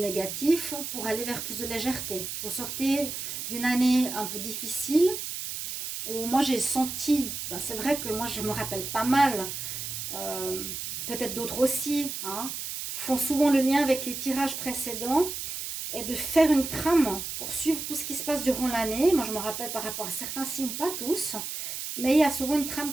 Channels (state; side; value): noise; right; hiss, 6 dB below the sound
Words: pour aller vers plus de légèreté. Vous sortez d'une année un peu difficile, où moi j'ai senti, c'est vrai que moi je me rappelle pas mal, peut-être d'autres aussi, hein, font souvent le lien avec les tirages précédents, et de faire une trame pour suivre tout ce qui se passe durant l'année. Moi je me rappelle par rapport à certains signes, pas tous, mais il y a souvent une trame